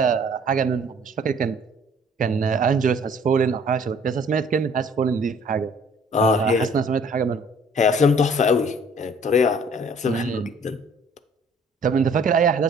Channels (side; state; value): both; normal; correlation 0.56